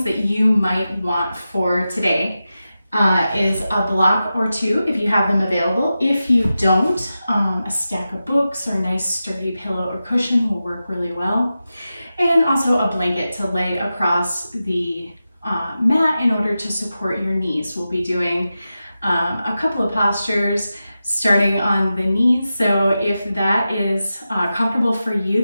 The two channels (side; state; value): both; inverted; correlation -0.92